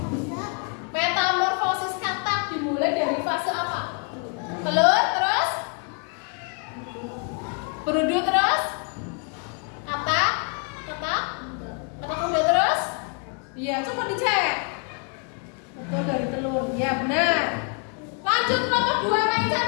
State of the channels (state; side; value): quieter; right; 39.6 dB